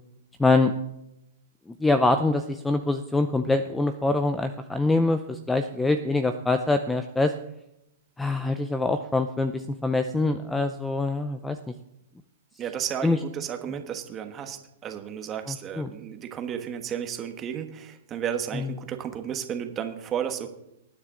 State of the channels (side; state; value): both; normal; correlation 0.73